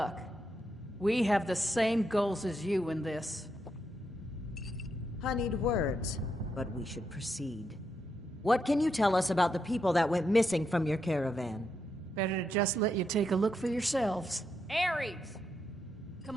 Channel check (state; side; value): normal; both; correlation 0.81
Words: We have the same goals as you in this. Honeyed words, but we should proceed. What can you tell us about the people that went missing from your caravan? Better to just let you take a look for yourselves. Ares!